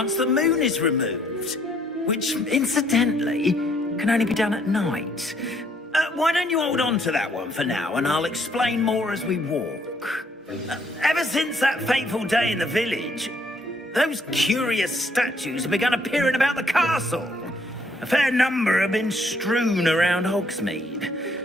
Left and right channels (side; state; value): both; normal; correlation 0.67